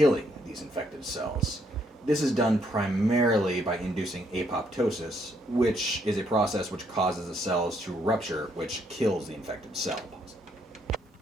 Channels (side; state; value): both; normal; correlation 0.71